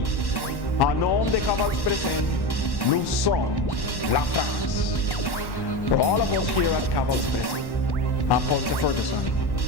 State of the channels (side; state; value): right; late; 1.1 ms